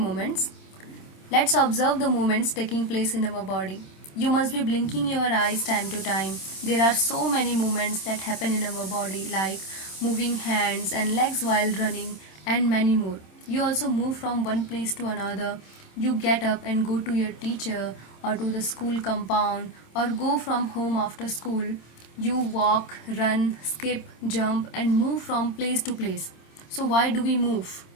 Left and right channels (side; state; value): right; late; 26 ms